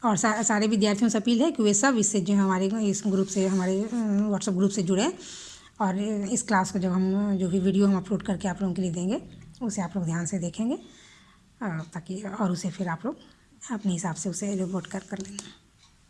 और सारे विद्यार्थियों से अपील है कि वे सब इससे जो हमारे इस ग्रुप से, हमारे व्हाट्सएप ग्रुप से जुड़े, और इस क्लास को जब हम जो भी वीडियो हम अपलोड करके आप लोगों के लिए देंगे उसे आप लोग ध्यान से देखेंगे, ताकि और उसे फिर आप लोग अपने हिसाब से उसे रिपोर्ट कर लेंगे।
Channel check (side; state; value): both; identical; correlation 1.00